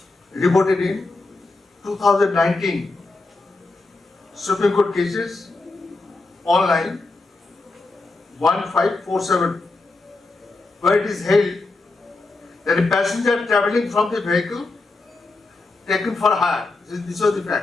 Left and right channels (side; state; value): right; quieter; 3.4 dB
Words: reported in 2019 Supreme Court cases online 1547, where it is held that a passenger travelling from the vehicle taken for hire, this was the